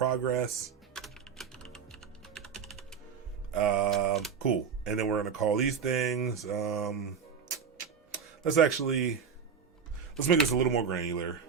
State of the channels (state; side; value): quieter; left; 6.5 dB